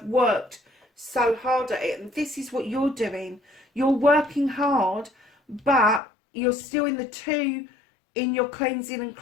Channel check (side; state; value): right; drops out; at 6.0 s